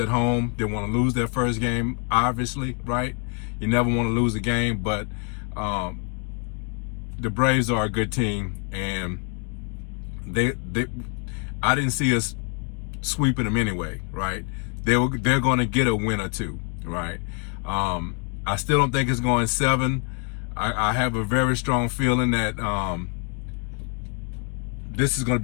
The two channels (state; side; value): quieter; right; 36.6 dB